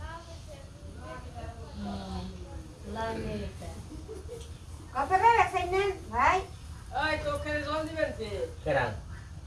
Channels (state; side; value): identical; both; correlation 1.00